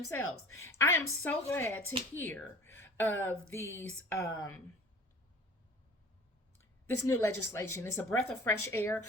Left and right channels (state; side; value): normal; both; correlation 0.45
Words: I am so glad to hear of these this new legislation. It's a breath of fresh air.